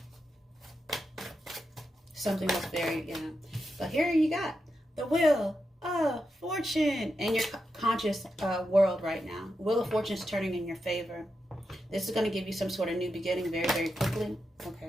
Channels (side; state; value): both; normal; correlation 0.87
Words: Something was very, yeah. But here you got the Wheel of Fortune in your conscious world right now. Wheel of Fortune is turning in your favor. This is going to give you some sort of new beginning very, very quickly.